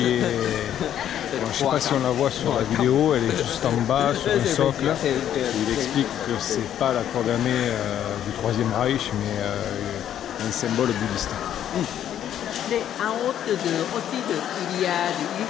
est... Bon, je ne sais pas si on la voit sur la vidéo, elle est juste en bas sur un socle. Il explique que ce n'est pas la croix gammée du Troisième Reich, mais un symbole bouddhiste. Et en haut aussi, il y a des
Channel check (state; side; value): quieter; right; 10.5 dB